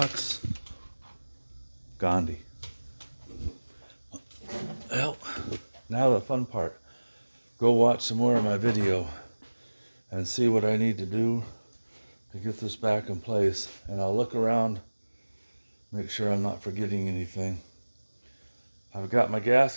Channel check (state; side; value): inverted; both; correlation -1.00